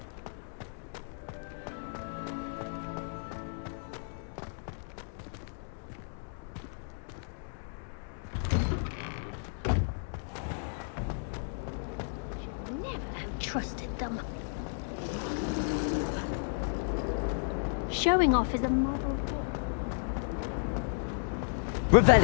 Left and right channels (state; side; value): silent; right; digital silence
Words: Trusted them. Showing off is a model.